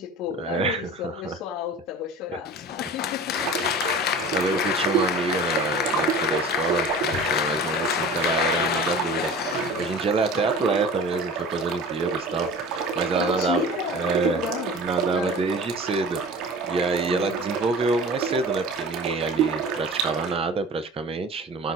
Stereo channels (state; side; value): normal; both; correlation 0.39